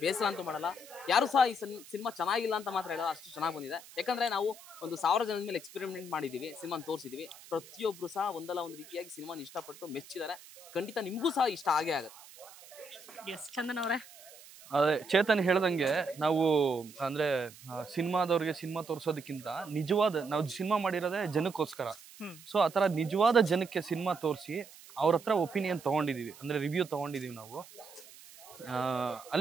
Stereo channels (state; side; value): noise; right; hiss, 20 dB below the sound